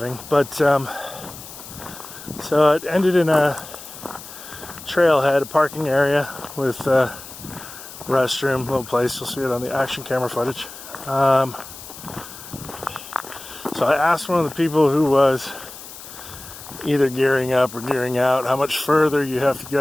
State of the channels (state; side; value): noise; left; hiss, 15 dB below the sound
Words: But so it ended in a trailhead, a parking area with a restroom, little place. You'll see it on the action camera footage. So I asked one of the people who was either gearing up or gearing out how much further you have to